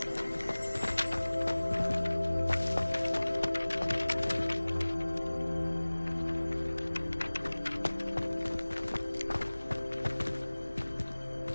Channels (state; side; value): inverted; both; correlation -1.00